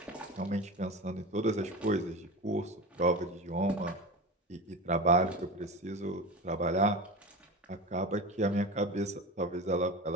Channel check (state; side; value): normal; both; correlation 0.27